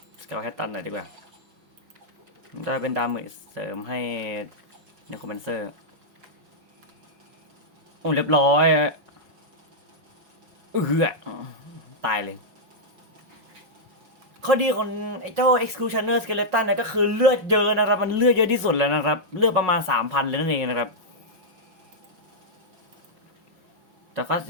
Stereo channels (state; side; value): late; left; 5.7 ms